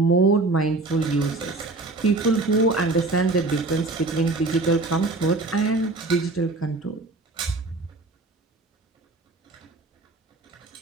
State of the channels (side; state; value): left; quieter; 3.2 dB